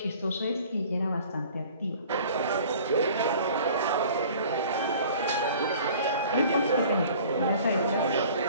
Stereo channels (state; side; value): inverted; both; correlation -0.48